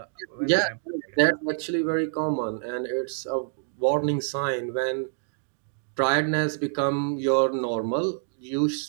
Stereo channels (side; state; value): left; silent; digital silence